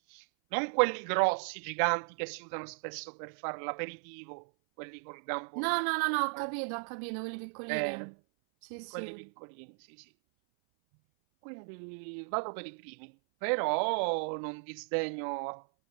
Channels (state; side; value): silent; left; 54 dB below the other